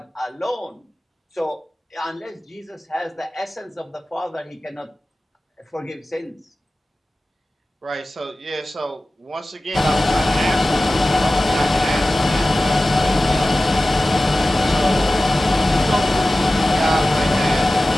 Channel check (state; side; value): normal; both; correlation 0.96